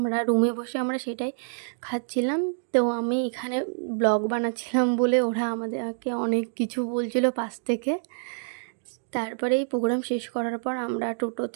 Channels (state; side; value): silent; left; digital silence